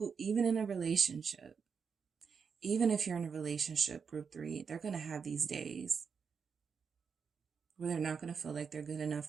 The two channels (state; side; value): quieter; left; 6.1 dB